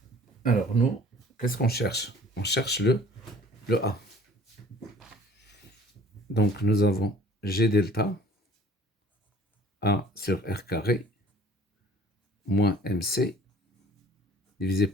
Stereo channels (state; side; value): normal; both; correlation 0.51